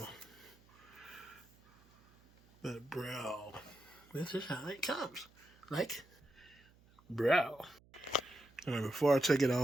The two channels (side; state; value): right; noise; hum, 28 dB below the sound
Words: But, bro, this is how it comes. Like, bro. Alright, before I take it